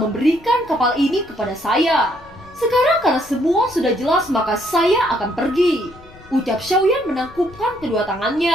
memberikan kapal ini kepada saya. Sekarang karena semua sudah jelas, maka saya akan pergi," Ucap Xiaoyan menangkupkan kedua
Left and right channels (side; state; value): left; noise; rumble, 23 dB below the sound